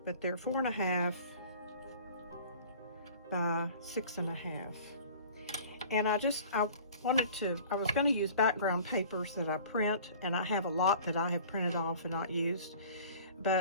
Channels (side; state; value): both; inverted; correlation -0.47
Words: but they're 4 1/2 by 6 1/2. And I was going to use background papers that I print, and I have a lot that I have printed off and not used.